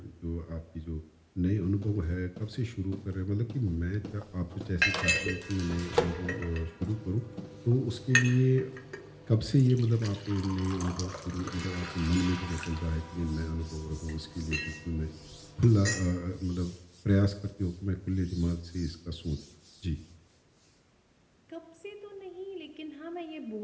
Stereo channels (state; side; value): identical; both; correlation 1.00